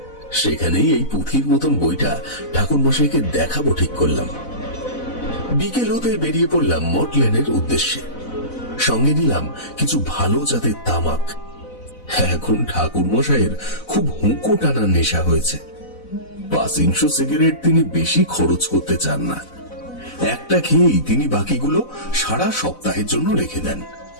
সেখানেই এই পুঁথির মতন বইটা ঠাকুর মশাইকে দেখাবো ঠিক করলাম। বিকেল হতে বেরিয়ে পড়লাম মঠ লেনের উদ্দেশ্যে। সঙ্গে নিলাম কিছু ভালো জাতের তামাক। এখন ঠাকুর মশাইয়ের খুব হুঁকো টানার নেশা হয়েছে। 500 সিগারেট তিনি বেশি খরচ করতে চান না। একটা খেয়েই তিনি বাকিগুলো সারা সপ্তাহের জন্য রেখে দেন।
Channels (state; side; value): late; right; 4.0 ms